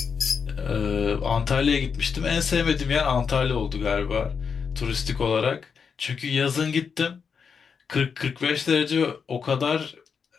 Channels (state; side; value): quieter; right; 6.2 dB